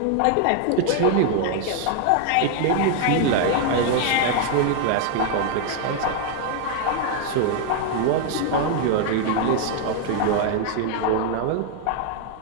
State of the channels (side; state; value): both; different; correlation 0.00